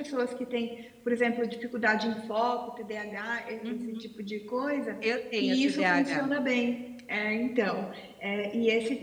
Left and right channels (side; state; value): both; identical; correlation 1.00